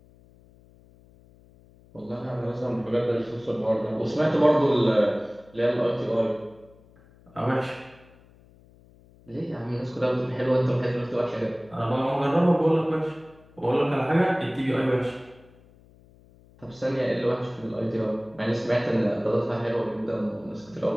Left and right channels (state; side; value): noise; left; hum, 27 dB below the sound